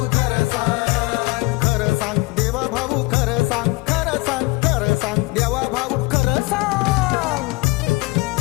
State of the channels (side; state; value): right; quieter; 23.7 dB